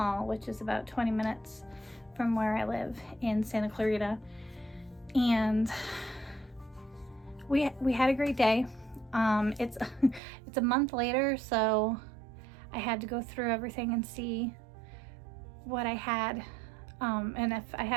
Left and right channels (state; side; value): drops out; left; at 10.2 s